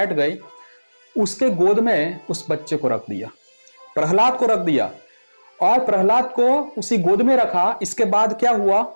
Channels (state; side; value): inverted; both; correlation -1.00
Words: गई, उसके गोद में उस बच्चे को रख दिया, प्रहलाद को रख दिया और प्रहलाद को उसी गोद में रखा। इसके बाद क्या हुआ,